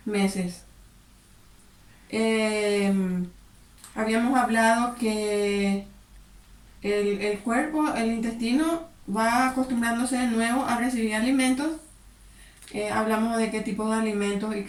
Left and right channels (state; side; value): identical; both; correlation 1.00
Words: meses. Eh, Habíamos hablado que el cuerpo, el intestino, va acostumbrándose de nuevo a recibir alimentos. Hablamos de qué tipo de alimentos y